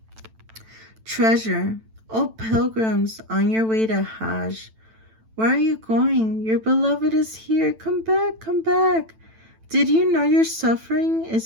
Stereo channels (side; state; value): left; late; 9.0 ms